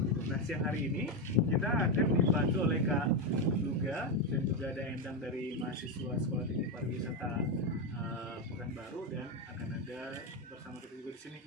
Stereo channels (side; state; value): both; normal; correlation 0.09